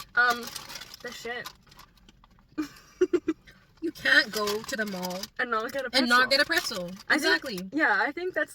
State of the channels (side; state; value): both; identical; correlation 1.00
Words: The shit. You can't go to the mall And not get a pretzel. and not get a pretzel. Exactly. I think that's